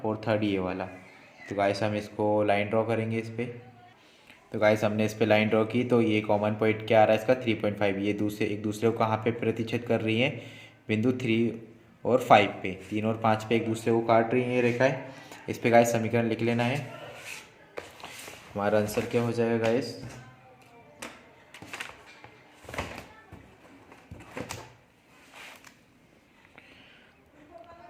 और थर्ड ये वाला। तो गाइस हम इसको लाइन ड्रॉ करेंगे इस पर। तो गाइस हमने इस पे लाइन ड्रॉ की, तो ये कॉमन पॉइंट क्या आ रहा है इसका 3.5, ये एक दूसरे को कहाँ पे प्रतिच्छेद कर रही हैं, बिंदु 3 और 5 पे, 3 और 5 पे एक दूसरे को काट रही हैं ये रेखाएं। इस पे गाइस समीकरण लिख लेना है, हमारा आंसर क्या हो जाएगा गाइस,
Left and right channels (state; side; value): identical; both; correlation 1.00